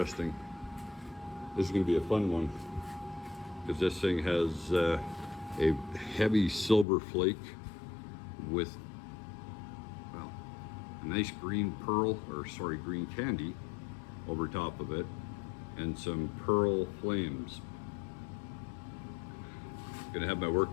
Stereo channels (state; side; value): drops out; right; at 6.9 s